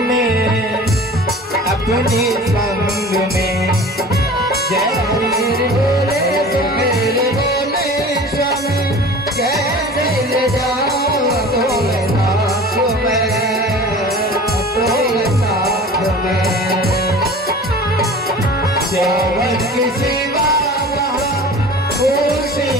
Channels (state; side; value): normal; both; correlation 0.40